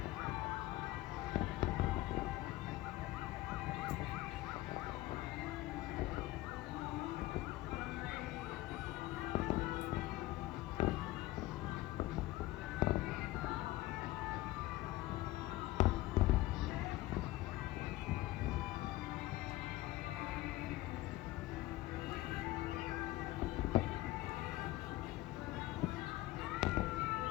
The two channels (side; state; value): right; quieter; 17.4 dB